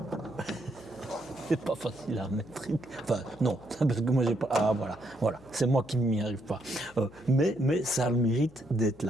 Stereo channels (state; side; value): noise; left; hum, 24 dB below the sound